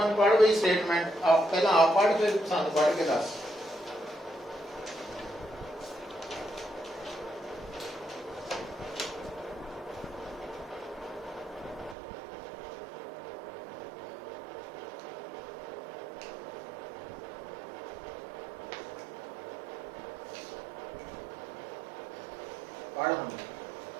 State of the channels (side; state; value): left; drops out; at 12.0 s